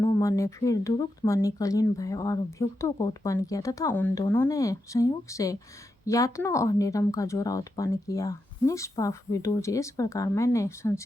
ने फिर दुरुक्त मणि, कलीन भय और भ्युक्तों को उत्पन्न किया तथा उन दोनों ने संयोग से यातना और निरम का जोड़ा उत्पन्न किया। निष्पाप विदुर जी, इस प्रकार मैंने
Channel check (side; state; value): both; normal; correlation 0.86